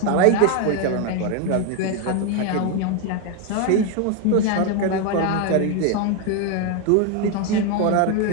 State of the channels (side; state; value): both; different; correlation 0.01